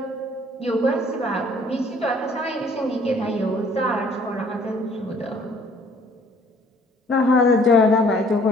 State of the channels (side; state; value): both; normal; correlation 0.58